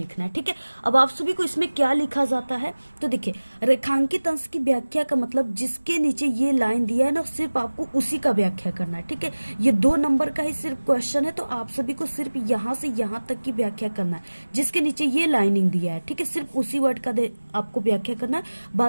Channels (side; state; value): both; inverted; correlation -1.00